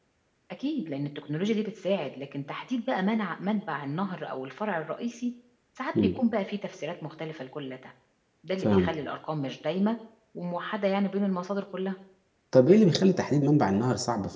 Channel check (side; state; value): both; identical; correlation 1.00